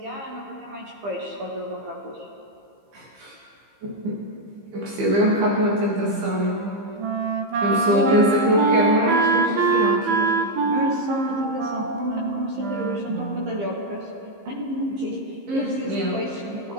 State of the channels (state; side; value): late; left; 15 ms